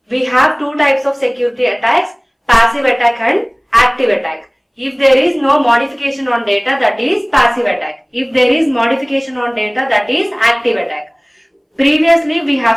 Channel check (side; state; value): both; identical; correlation 1.00